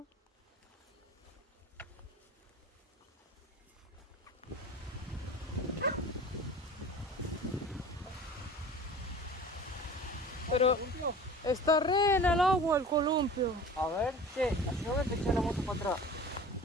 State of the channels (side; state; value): both; normal; correlation 0.40